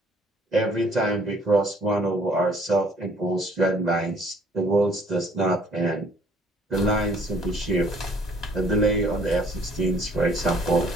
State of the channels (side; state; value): both; normal; correlation 0.59